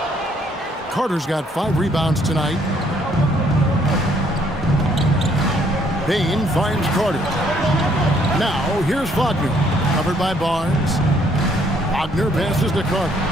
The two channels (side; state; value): both; normal; correlation 0.66